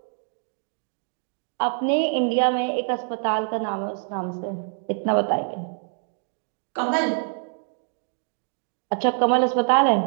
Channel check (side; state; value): left; silent; 61 dB below the other